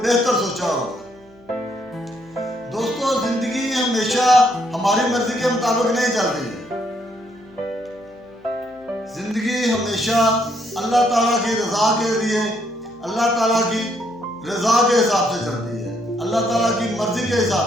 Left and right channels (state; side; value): noise; left; hum, 27 dB below the sound